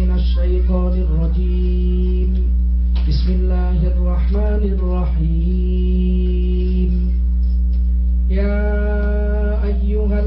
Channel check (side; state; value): both; identical; correlation 1.00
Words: syaithanir rajim. Bismillahirrahmanirrahim. Ya